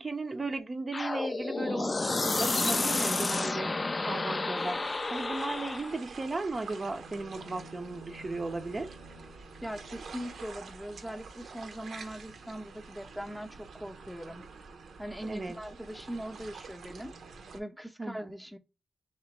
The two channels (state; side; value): normal; both; correlation 0.93